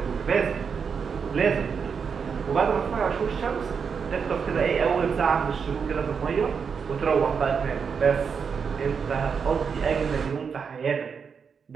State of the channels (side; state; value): left; quieter; 6.2 dB